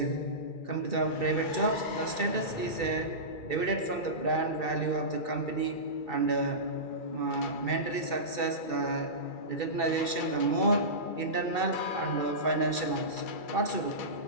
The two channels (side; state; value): right; late; 2.3 ms